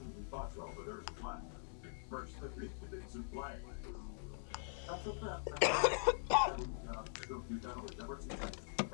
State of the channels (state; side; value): silent; right; digital silence